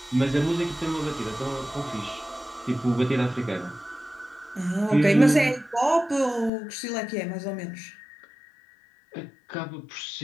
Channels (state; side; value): drops out; right; at 6.5 s